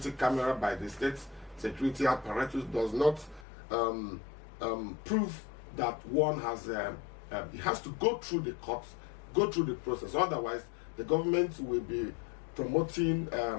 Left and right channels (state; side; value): drops out; right; at 3.5 s